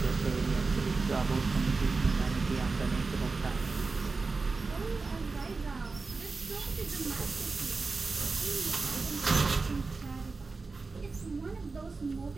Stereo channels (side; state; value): left; quieter; 4.0 dB